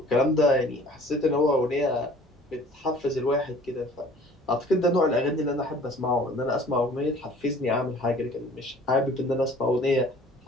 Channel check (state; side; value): normal; both; correlation 0.50